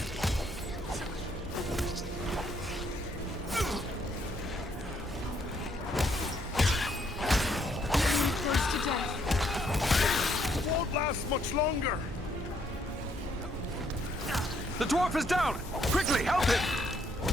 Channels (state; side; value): normal; both; correlation 0.70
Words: Close to death. It won't last much longer. The dwarf is down! Quickly, help him!